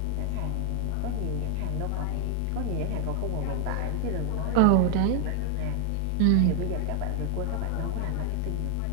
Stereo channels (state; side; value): different; both; correlation 0.00